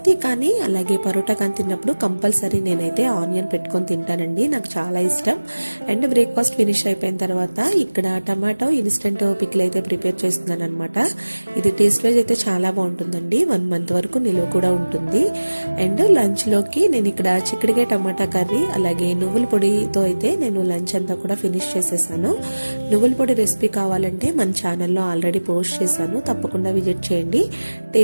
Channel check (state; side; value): inverted; both; correlation -1.00